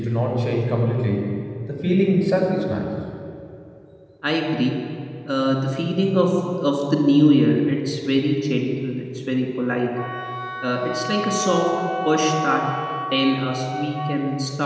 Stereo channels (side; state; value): both; identical; correlation 1.00